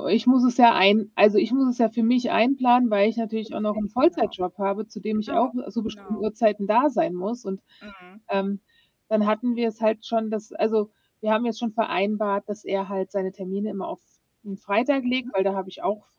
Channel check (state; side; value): identical; both; correlation 1.00